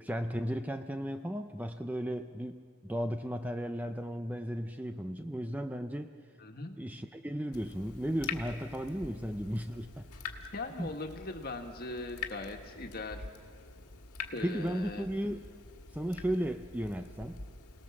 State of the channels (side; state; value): both; normal; correlation 0.83